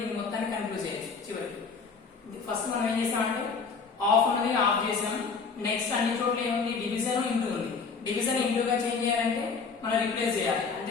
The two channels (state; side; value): quieter; right; 5.1 dB